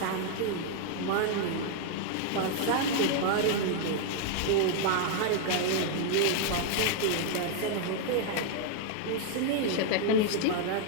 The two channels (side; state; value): both; different; correlation 0.00